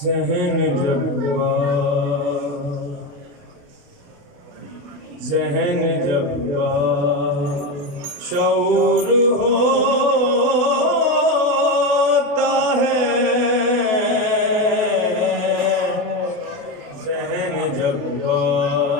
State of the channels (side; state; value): left; late; 28 ms